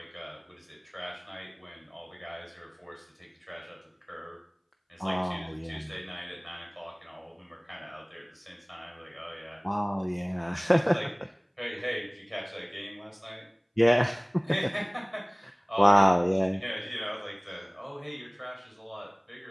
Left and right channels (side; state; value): both; identical; correlation 1.00